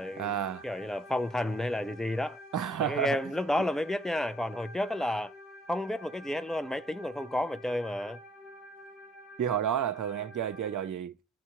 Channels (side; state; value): both; normal; correlation 0.61